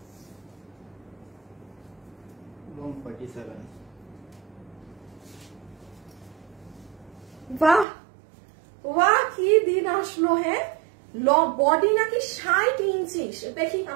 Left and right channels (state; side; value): drops out; left; at 7.9 s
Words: লং 47। বাহ বাহ কি দিন আসলো, হ্যাঁ। বডি নাকি 60 ইঞ্চি, দেখি